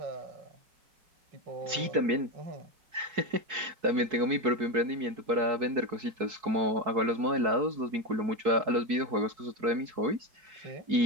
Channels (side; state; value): left; late; 4.6 ms